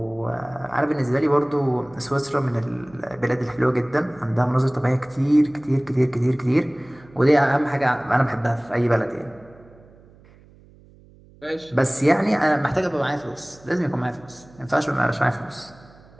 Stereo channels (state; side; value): noise; right; hum, 26 dB below the sound